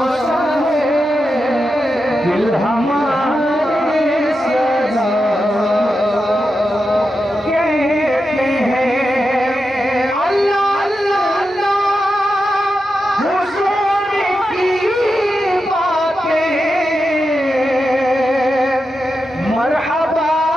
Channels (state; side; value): normal; both; correlation 0.88